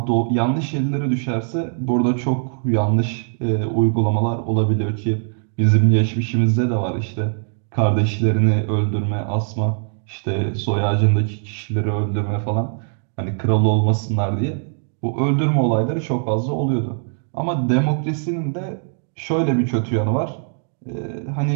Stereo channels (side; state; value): left; silent; 65 dB below the other